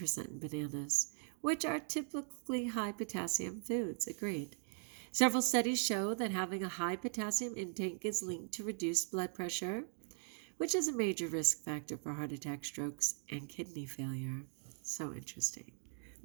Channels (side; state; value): left; silent; 51 dB below the other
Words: in bananas, which are typically high potassium foods. Agreed. Several studies show that having a high potassium intake is linked to reduced blood pressure, which is a major risk factor for heart attack, strokes, and kidney failure. So interesting.